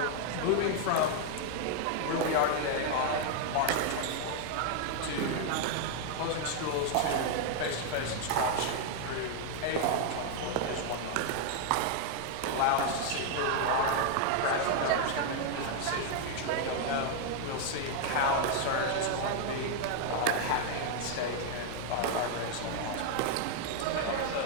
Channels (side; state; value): both; different; correlation 0.00